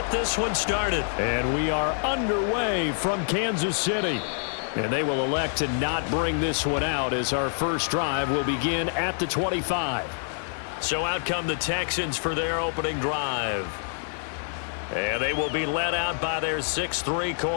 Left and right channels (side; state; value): right; silent; 61 dB below the other